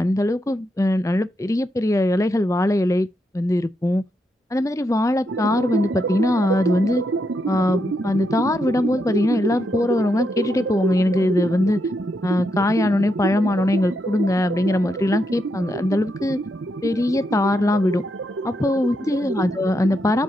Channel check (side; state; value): both; normal; correlation 0.81